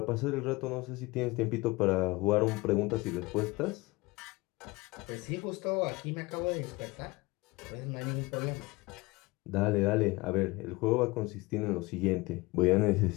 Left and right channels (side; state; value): right; quieter; 22.7 dB